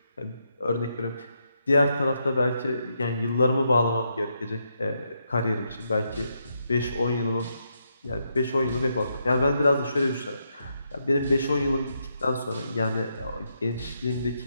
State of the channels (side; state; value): both; inverted; correlation -0.80